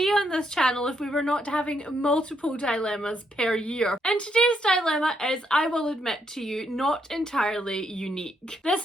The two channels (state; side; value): normal; both; correlation 0.76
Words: on this channel if we were not having multiple dilemmas per year? And today's dilemma is, I will admit to you, not entirely unique.